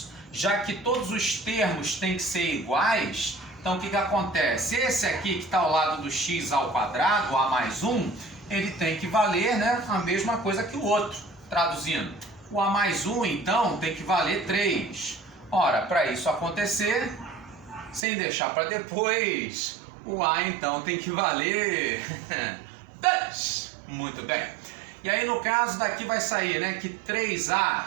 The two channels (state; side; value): drops out; left; at 18.0 s